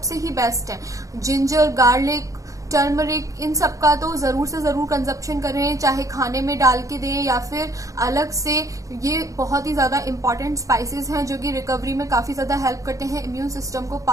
ही बेस्ट है। जिंजर, गार्लिक, टर्मरिक, इन सब का तो जरूर से जरूर कंजप्शन करें, चाहे खाने में डाल के दें या फिर अलग से। ये बहुत ही ज्यादा इंपॉर्टेंट स्पाइसेस हैं जो कि रिकवरी में काफी ज्यादा हेल्प करते हैं, इम्यून सिस्टम को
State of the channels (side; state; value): left; late; 0.16 ms